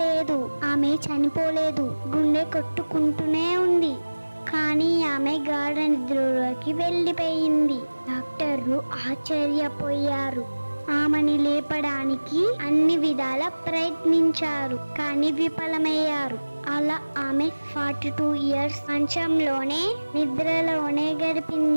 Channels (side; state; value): both; inverted; correlation -1.00